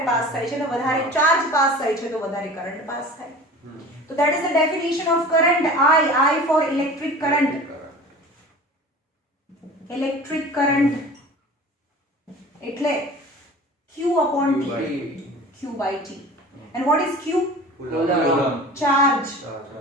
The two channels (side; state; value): both; normal; correlation 0.40